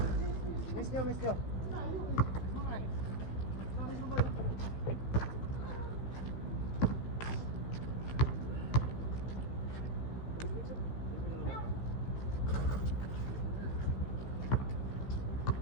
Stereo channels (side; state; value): right; late; 16 ms